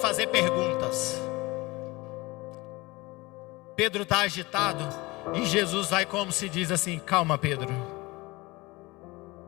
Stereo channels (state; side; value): quieter; right; 22.5 dB